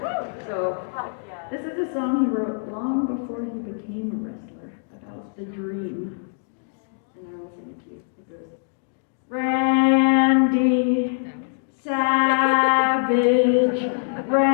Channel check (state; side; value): silent; right; digital silence